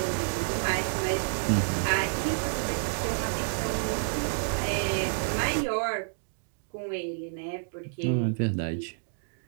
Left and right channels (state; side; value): silent; left; digital silence